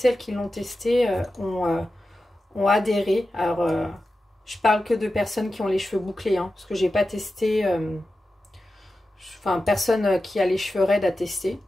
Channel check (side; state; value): both; normal; correlation 0.92